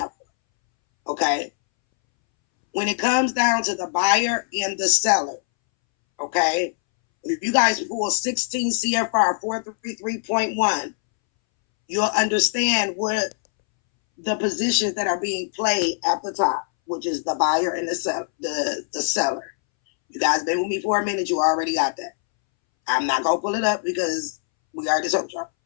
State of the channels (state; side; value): silent; right; 63 dB below the other